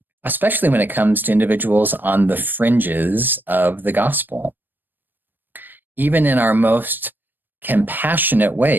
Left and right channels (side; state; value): left; late; 0.092 ms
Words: especially when it comes to individuals on the fringes of the gospel. Even in our most compassionate